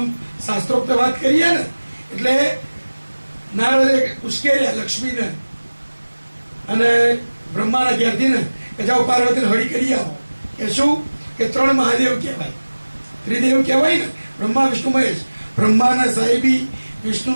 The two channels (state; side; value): inverted; both; correlation -1.00